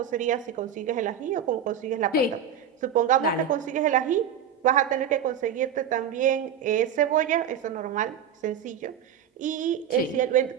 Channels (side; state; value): left; quieter; 8.4 dB